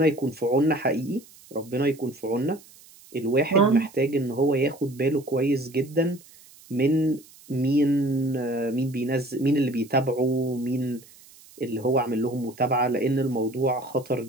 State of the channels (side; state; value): right; noise; hiss, 24 dB below the sound